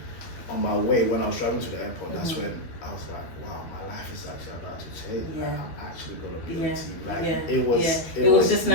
on my way, when I was driving to the airport, that's when I was like, wow, my life is actually about to change. Yeah. Like, I'm actually going to be on TV. Like, it was just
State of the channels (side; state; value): right; late; 12 ms